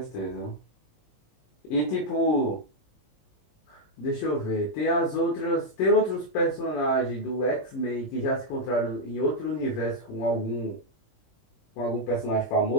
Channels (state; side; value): late; right; 19 ms